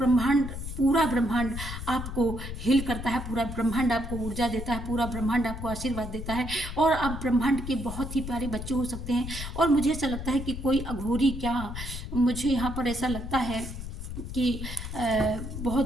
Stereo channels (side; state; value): left; noise; rumble, 7 dB below the sound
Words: पूरा ब्रह्मांड आपको हील करता है, पूरा ब्रह्मांड आपको ऊर्जा देता है, पूरा ब्रह्मांड आपको आशीर्वाद देता है और आप ब्रह्मांड के बहुत ही प्यारे बच्चे हो सकते हैं। और मुझे ऐसा लगता है कि कोई अघोरी, क्या मुझे यहाँ पर ऐसा लगता है कि बहुत